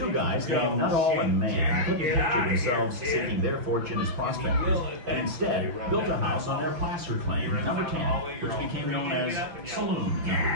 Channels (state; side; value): late; left; 5.9 ms